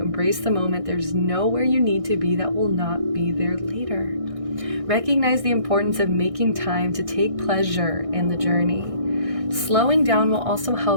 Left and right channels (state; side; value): late; left; 1.6 ms